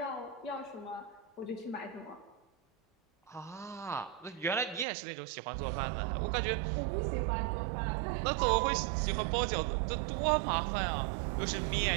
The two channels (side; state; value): left; drops out; at 4.9 s